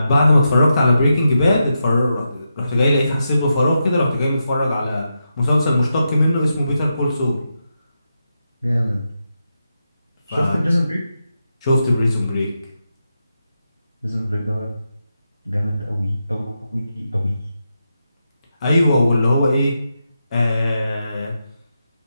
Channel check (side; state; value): both; inverted; correlation -0.87